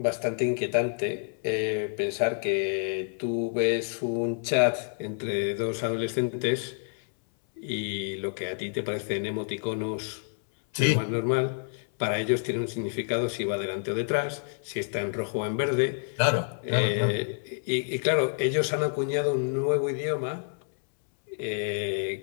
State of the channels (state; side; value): silent; right; 59 dB below the other